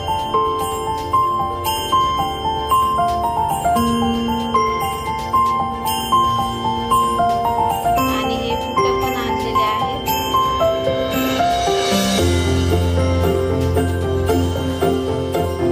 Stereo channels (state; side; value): identical; both; correlation 1.00